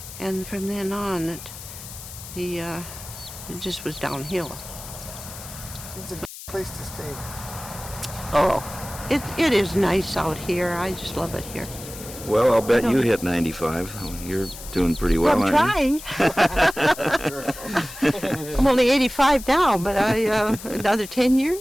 and from then on, it just was downhill. It's a good place to stay. Oh, it is nice out here. I just love it here. Well, I'll bet you hit 95. You're doing pretty well, I'm aren't trying. I'm only 85 now, but another 10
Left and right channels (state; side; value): noise; left; hiss, 13 dB below the sound